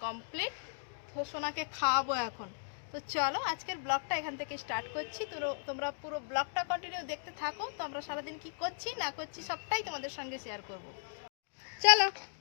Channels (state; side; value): silent; right; digital silence